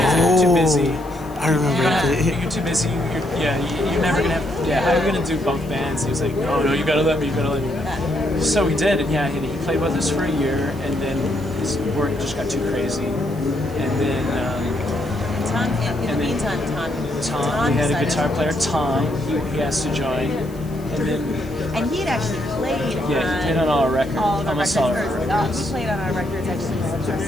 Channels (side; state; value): left; noise; hiss, 24 dB below the sound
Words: Too busy. I remember that. You're too busy. You're never gonna have. Yeah, how are you gonna do both bands? He was like, no, you gotta let me. So we did, and he played with us for a year, and then his work just got too crazy, and then. In the meantime, Tom we had a guitar player, Tom. He asked to join, and he had actually played. He played on all our records. Almost all our records. He played on our records actually since our